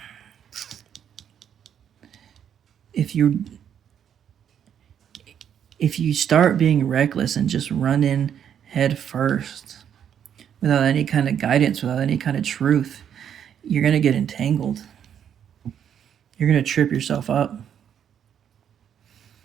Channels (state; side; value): quieter; left; 8.9 dB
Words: If you start being reckless and just run in head first without any kind of guidance, without any kind of truth, you're going to get entangled. You're going to trip yourself up.